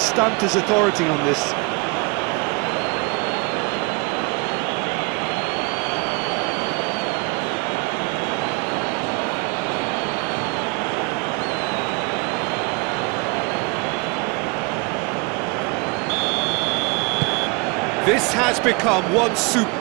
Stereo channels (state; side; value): quieter; left; 29.3 dB